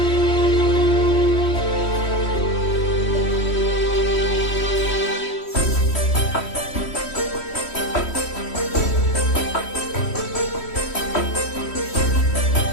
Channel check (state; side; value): late; right; 3.1 ms